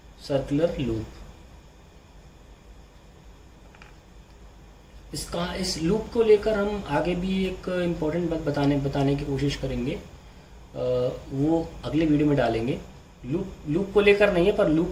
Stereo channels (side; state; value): both; identical; correlation 1.00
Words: circular loop. इस लूप को लेकर हम आगे भी एक इम्पोर्टेंट बात बताने की कोशिश करेंगे, वो अगले वीडियो में डालेंगे। लूप को लेकर नहीं है, पर लूप